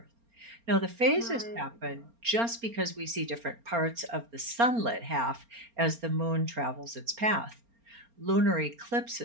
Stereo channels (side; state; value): left; late; 4.3 ms